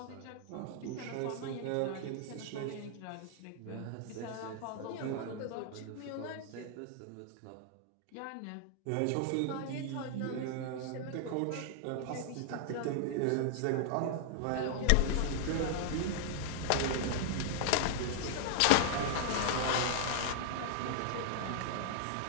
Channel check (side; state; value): both; different; correlation -0.01